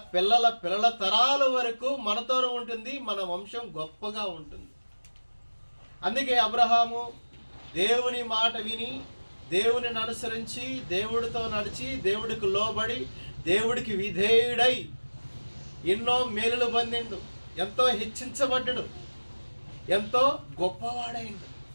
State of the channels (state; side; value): inverted; both; correlation -1.00